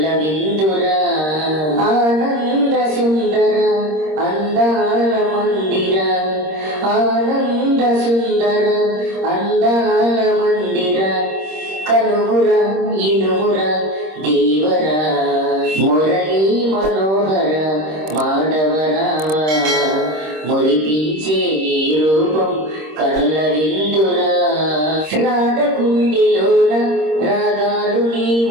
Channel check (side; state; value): left; late; 26 ms